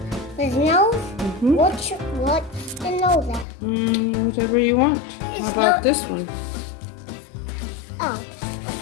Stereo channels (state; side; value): drops out; right; at 3.5 s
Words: His nose? Mm-hmm. What's the nose at? Whatever you want. How about this one? Oh,